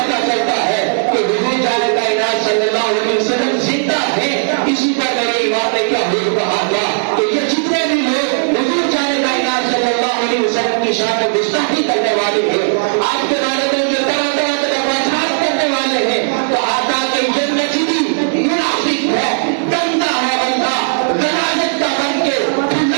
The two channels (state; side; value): silent; left; digital silence